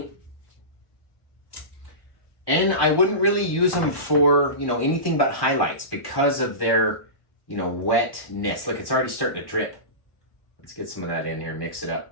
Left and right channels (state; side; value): late; right; 1.1 ms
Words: And I wouldn't really use them for, anything but highlights because of their, wetness. Look, it's already starting to drip. Let's get some of that in here, mix it up.